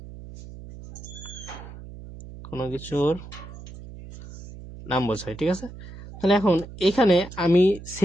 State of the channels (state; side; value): noise; right; hum, 14 dB below the sound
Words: কোনো কিছুর নাম বোঝায়, ঠিক আছে? তাহলে এখন এখানে আমি